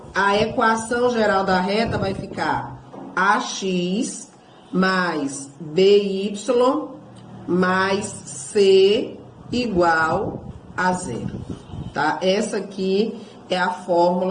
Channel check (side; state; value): both; identical; correlation 1.00